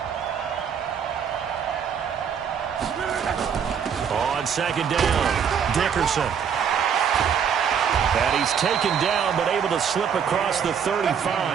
On 2nd down, Dickerson. And he's taken down, but able to slip across the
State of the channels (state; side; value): quieter; left; 7.5 dB